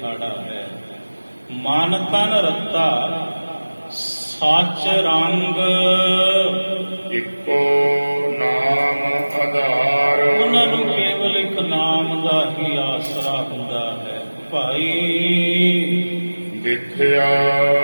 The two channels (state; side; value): inverted; both; correlation -1.00